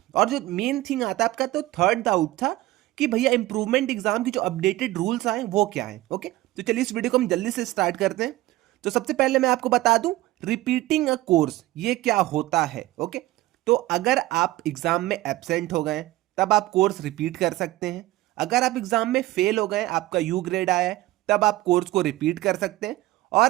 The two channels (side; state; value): left; quieter; 17.1 dB